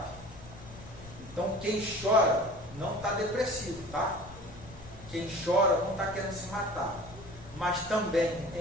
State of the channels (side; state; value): left; noise; rumble, 18 dB below the sound